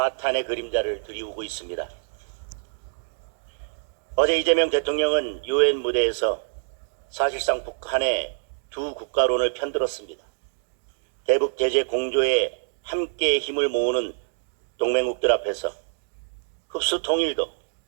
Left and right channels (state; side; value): silent; left; digital silence